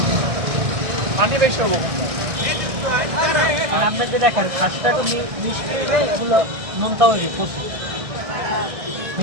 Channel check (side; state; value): left; late; 1.6 ms